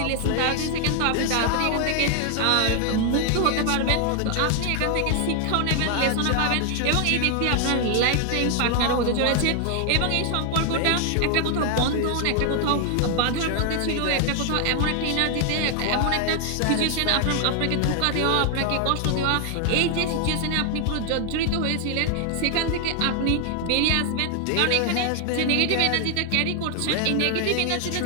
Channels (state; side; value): different; both; correlation 0.00